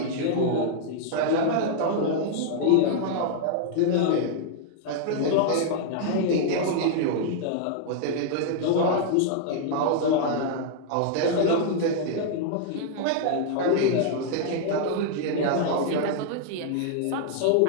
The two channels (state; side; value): different; both; correlation -0.01